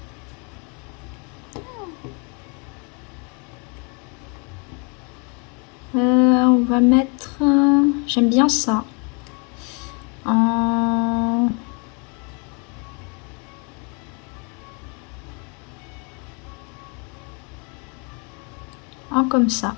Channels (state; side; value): quieter; right; 34.1 dB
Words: On va mettre... j'aime bien ça. En comme ça.